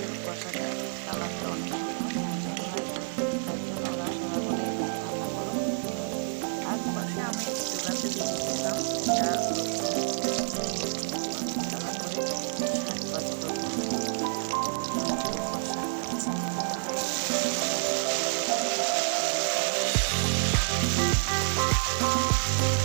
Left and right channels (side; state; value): left; silent; 58 dB below the other